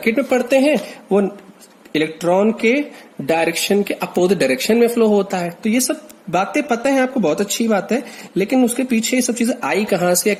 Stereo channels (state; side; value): identical; both; correlation 1.00